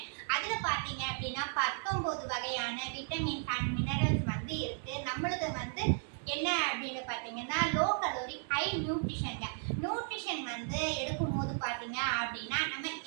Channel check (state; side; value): silent; left; 54 dB below the other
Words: அதுல பாத்தீங்க அப்படின்னா 19 வகையான விட்டமின்ஸ் அண்ட் மினரல்ஸ் இருக்கு. நம்மளுக்கு என்ன அப்படின்னு பாத்தீங்கன்னா லோ கலோரி ஹை நியூட்ரிஷன்ங்க. நியூட்ரிஷன் எடுக்கும் போது பாத்தீங்க அப்படின்னா நம்ம